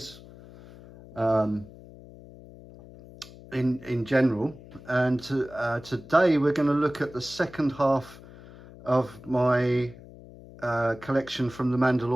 in general. And today we're going to look at the second half of my collection from the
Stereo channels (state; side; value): noise; left; hum, 19 dB below the sound